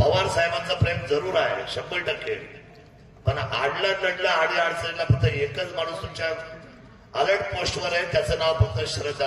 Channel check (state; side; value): identical; both; correlation 1.00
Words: साहेबांचं प्रेम जरूर आहे 100%. पण आडला नडला आडी अडचणीला फक्त एकच माणूस तुमच्या अलर्ट पोस्टवर आहे, त्याचं नाव फक्त